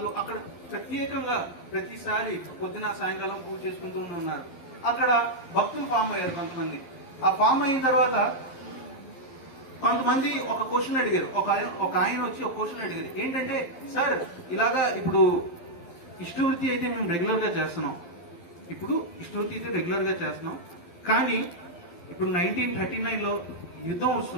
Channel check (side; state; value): right; late; 12 ms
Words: అక్కడ ప్రత్యేకంగా ప్రతిసారి పొద్దున సాయంకాలం పూజ చేసుకుంటూ ఉన్నారు. అక్కడ భక్తులు ఫామ్ అయ్యారు కొంతమంది. ఆ ఫామ్ అయిన తర్వాత కొంతమంది ఒక క్వశ్చన్ అడిగారు. ఒక ఆయన వచ్చి ఒక క్వశ్చన్ అడిగారు, ఏంటంటే సార్ ఇలాగా ఇప్పుడు ఇష్టవృత్తి అయితే మేము రెగ్యులర్ గా చేస్తున్నాం, కానీ ఇప్పుడు 1939లో యుద్ధం